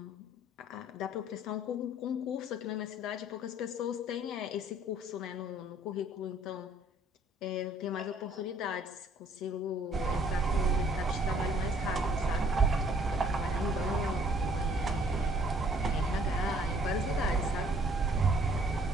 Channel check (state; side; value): normal; both; correlation 0.60